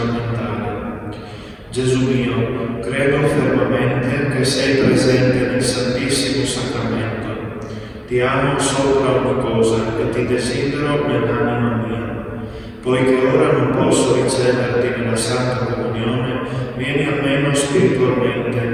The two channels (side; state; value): both; identical; correlation 1.00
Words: Gesù mio, credo fermamente che sei presente nel Santissimo Sacramento. Ti amo sopra ogni cosa e ti desidero nell'anima mia. Poiché ora non posso riceverti nella Santa Comunione, vieni almeno spiritualmente